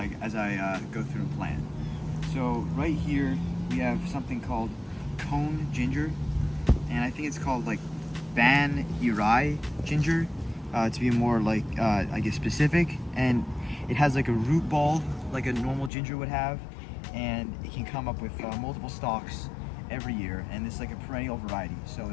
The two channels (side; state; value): right; drops out; at 15.9 s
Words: go through and plant. So right here we have something called cone ginger, and I think it's called like Ban Irai ginger to be more like I guess specific. And it has like a root ball like a normal ginger would have, and it can come up with multiple stalks every year, and it's like a perennial variety, so